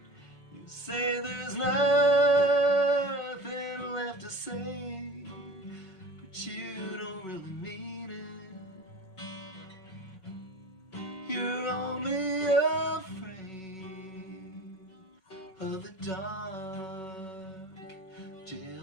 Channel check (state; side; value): late; right; 5.3 ms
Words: You say there's nothing left to say, but you don't really mean it. You're only afraid of the dark,